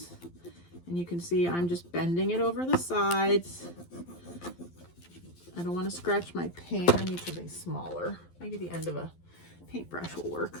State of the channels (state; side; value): late; right; 12 ms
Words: And you can see I'm just bending it over the sides. I don't want to scratch my paint. I need something smaller. Maybe the end of a paintbrush will work